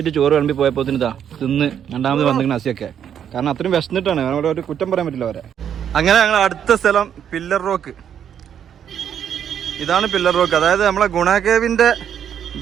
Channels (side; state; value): left; quieter; 8.9 dB